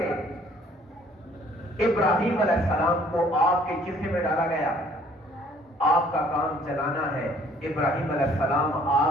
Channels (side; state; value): both; normal; correlation 0.59